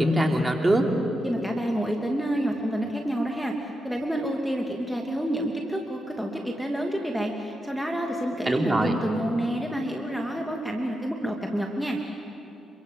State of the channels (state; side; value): normal; both; correlation 0.87